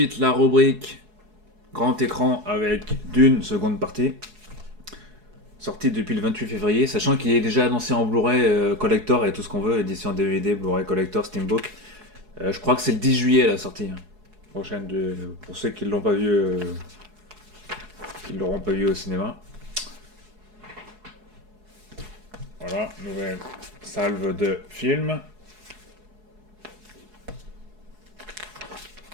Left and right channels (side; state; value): left; late; 4.7 ms